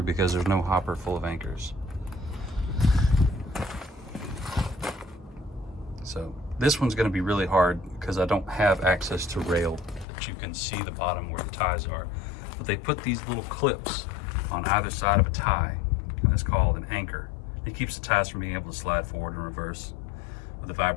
because there's no hopper full of anchors. So this one's going to be really hard because I don't have access to rail that you can see the bottom where the ties are. But they put these little clips on either side of a tie, and it's called an anchor. It keeps the ties from being able to slide forward and reverse with the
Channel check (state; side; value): drops out; right; at 10.1 s